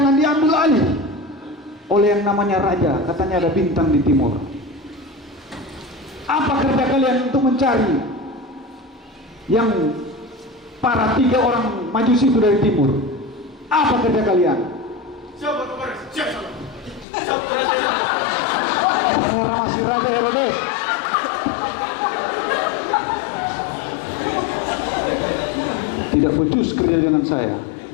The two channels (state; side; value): drops out; right; at 17.1 s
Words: diambil alih oleh yang namanya raja. Katanya ada bintang di timur. Apa kerja kalian untuk mencari yang para 3 orang Majusi itu dari timur? Apa kerja kalian? Siapa kemarin? Siapa? Saya masih raja Herodes. Tidak becus kerja dengan saya.